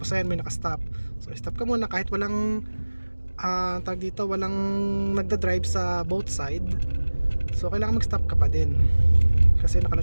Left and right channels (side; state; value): both; inverted; correlation -1.00